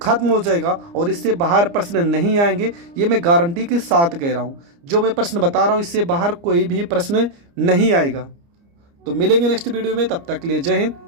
खत्म हो जाएगा और इससे बाहर प्रश्न नहीं आएंगे, ये मैं गारंटी के साथ कह रहा हूँ। जो मैं प्रश्न बता रहा हूँ इससे बाहर कोई भी प्रश्न नहीं आएगा। तो मिलेंगे नेक्स्ट वीडियो में, तब तक के लिए जय हिंद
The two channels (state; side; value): late; left; 29 ms